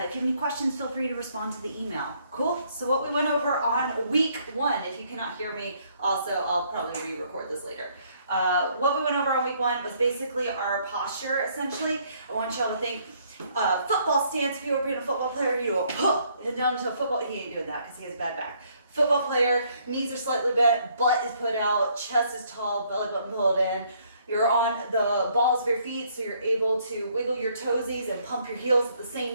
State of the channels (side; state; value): both; inverted; correlation -0.67